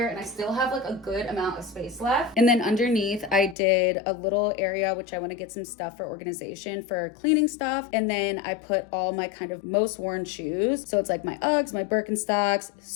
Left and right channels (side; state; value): right; drops out; at 3.6 s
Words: and I still have like a good amount of space left. And then underneath, I did a little area, which I want to get some stuff for organization for cleaning stuff. And then I put all my kind of most worn shoes. So it's like my Uggs, my Birkenstocks.